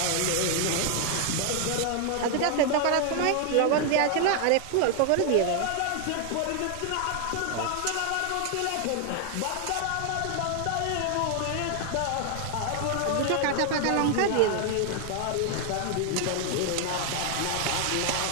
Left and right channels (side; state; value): both; different; correlation 0.00